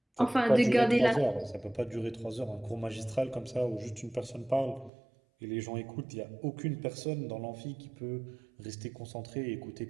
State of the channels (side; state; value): left; drops out; at 4.9 s